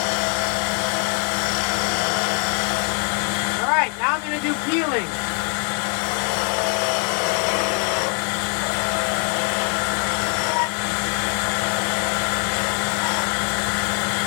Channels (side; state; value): right; quieter; 38.9 dB